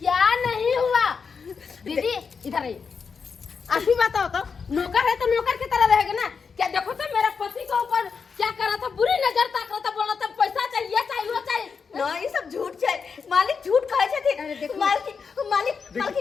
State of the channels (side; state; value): right; quieter; 5.6 dB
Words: नहीं हुआ दीदी, इधर आइए। आप ही बताओ तो, नौकर है तो नौकर की तरह रहेगा ना? क्या देखो तो मेरा पति के ऊपर क्या कर रहा था, बुरी नजर ताक रहा था, बोल रहा था पैसा चाहिए चाहिए वो चाहिए। ना ये सब झूठ छै, मालिक झूठ कहे छथिन।